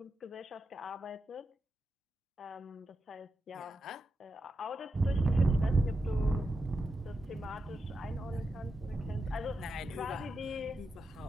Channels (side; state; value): both; normal; correlation 0.88